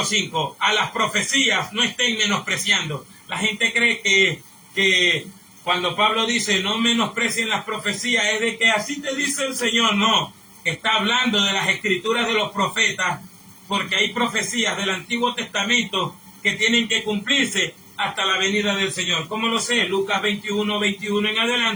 5. A las profecías no estén menospreciando. La gente cree que cuando Pablo dice no menosprecien las profecías es de que así te dice el Señor. No, está hablando de las escrituras de los profetas, porque hay profecías del Antiguo Testamento que tienen que cumplirse hasta la venida del Señor. ¿Cómo lo sé? Lucas 21 en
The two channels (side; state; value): both; identical; correlation 1.00